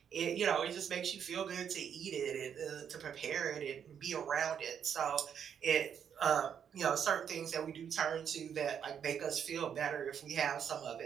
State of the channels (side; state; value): left; quieter; 8.1 dB